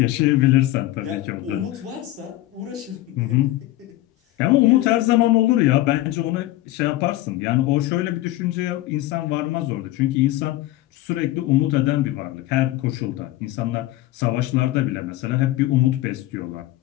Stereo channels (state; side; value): quieter; right; 15.9 dB